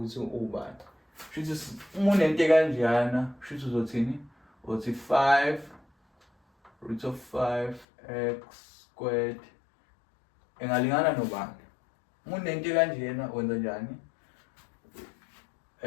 ukuthi ubani. Shuthi uma unento kanjena shuthi uzothini? Uthi 5 root of 5x squared engalingana nobani. Uma unento kanjena wenza njani?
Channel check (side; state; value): right; drops out; at 7.9 s